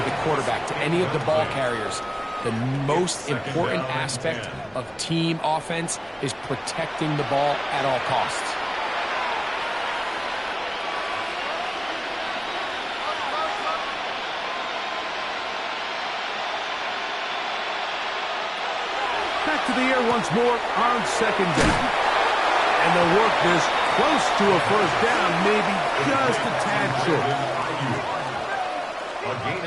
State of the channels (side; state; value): both; identical; correlation 1.00